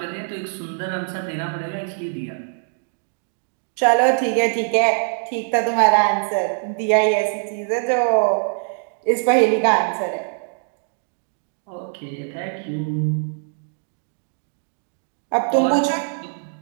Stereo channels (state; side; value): silent; left; digital silence